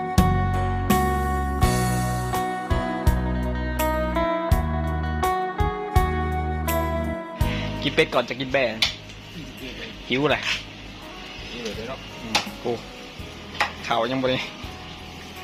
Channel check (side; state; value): both; identical; correlation 1.00